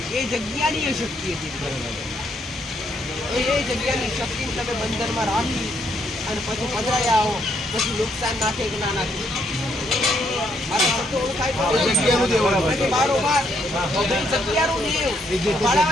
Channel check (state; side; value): normal; both; correlation 0.73